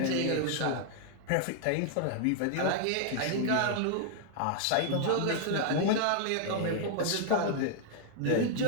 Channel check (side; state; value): both; different; correlation 0.00